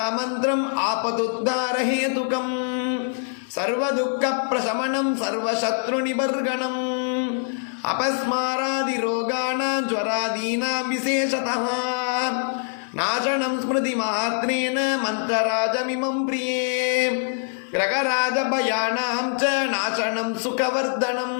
ஆபதுத்தாரஹேதுகம் சர்வதுக்க பிரசமனம் சர்வசத்ரு நிபர்கணம் அபஸ்மாராதி ரோகாணாம் ஜ்வராதீனாம் விசேஷதः நாசனம் ஸ்மிருதி மாத்ரேன மந்திரராஜமிமம் பிரியே கிரகராஜ பயானாம் ச நாசனம் சுகவர்தனம்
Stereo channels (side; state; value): right; silent; 63 dB below the other